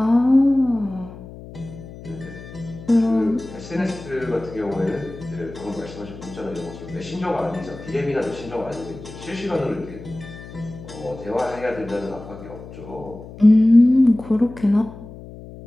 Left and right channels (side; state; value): left; noise; hum, 15 dB below the sound